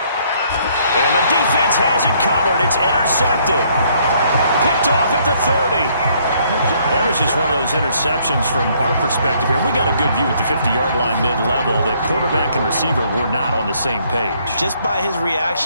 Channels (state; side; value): inverted; both; correlation -0.66